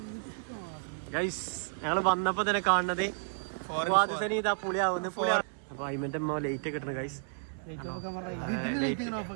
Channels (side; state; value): left; silent; 56 dB below the other